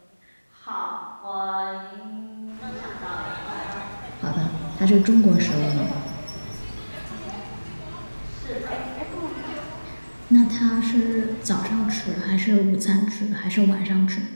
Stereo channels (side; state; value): both; inverted; correlation -1.00